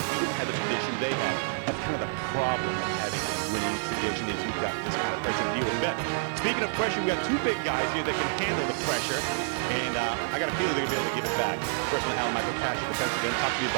you didn't have the tradition they have. That's kind of the problem of having a winning tradition, is you've got this kind of pressure to deal with. Bet. Speaking of pressure, we got 2 big guys here that can handle the pressure, and I got a feeling they're going to be able to give it back. First one, Alan Michael Cash at defensive end. Talk to me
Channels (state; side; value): silent; left; digital silence